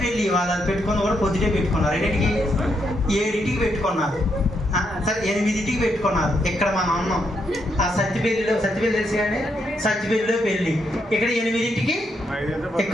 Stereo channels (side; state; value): both; normal; correlation 0.78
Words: పెళ్ళి వాళ్ళు పెట్టుకుని కూడా పొద్దుటే పెట్టుకున్నారు. 7ంటికి పెట్టుకున్నారు, సరే 8ంటికి పెట్టుకున్నారు. ఇక్కడ మనం ఉన్నాం ఆ సత్తిపల్లి తెలిసి కానీ సత్తిపల్లిలో పెళ్ళి, ఇక్కడ 8ంటికి